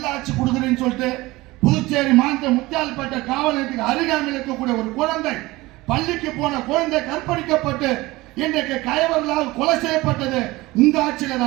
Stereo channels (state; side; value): quieter; left; 20.2 dB